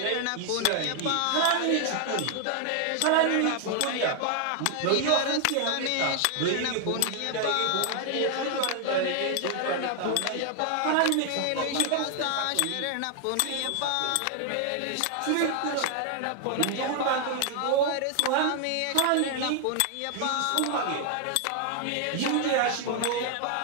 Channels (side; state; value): both; different; correlation 0.00